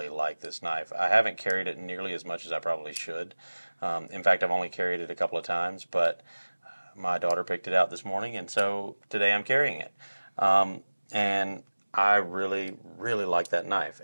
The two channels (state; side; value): inverted; both; correlation -1.00